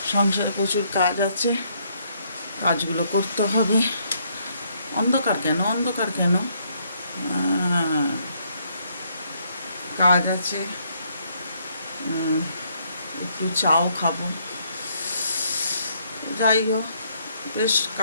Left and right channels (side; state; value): both; inverted; correlation -0.70